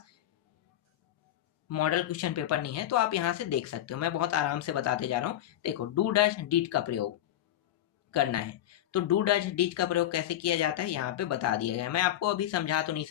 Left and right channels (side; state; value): right; quieter; 12.4 dB